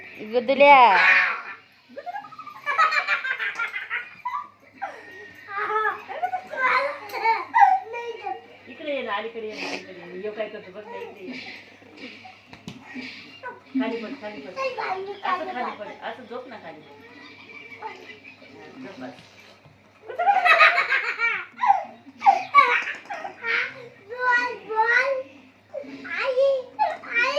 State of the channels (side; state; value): both; identical; correlation 1.00